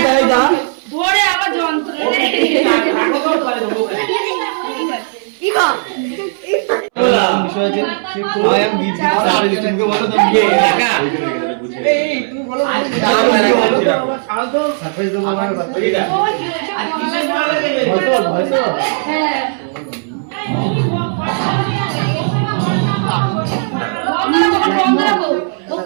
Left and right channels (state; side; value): silent; left; 67 dB below the other